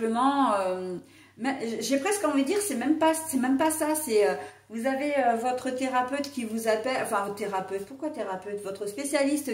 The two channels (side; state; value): both; identical; correlation 1.00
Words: j'ai presque envie de dire, c'est même pas ça, c'est vous avez votre thérapeute qui vous appelle, enfin thérapeute, pourquoi thérapeute? Votre